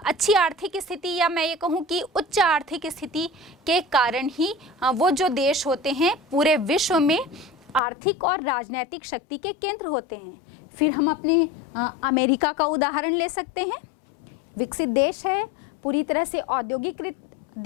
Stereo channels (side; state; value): right; drops out; at 7.8 s